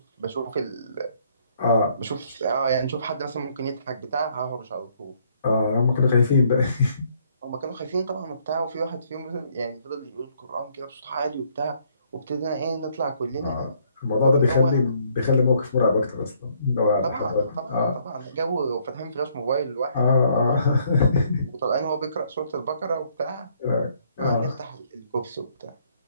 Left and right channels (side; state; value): both; inverted; correlation -0.67